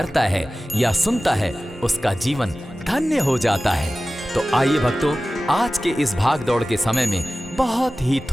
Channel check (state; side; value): normal; both; correlation 0.96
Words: है या सुनता है उसका जीवन धन्य हो जाता है। तो आइए भक्तों, आज के इस भाग दौड़ के समय में बहुत ही